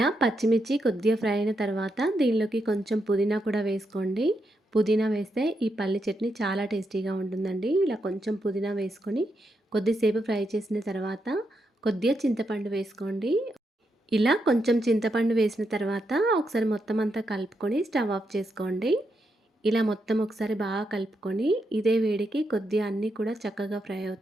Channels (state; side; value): normal; both; correlation 0.82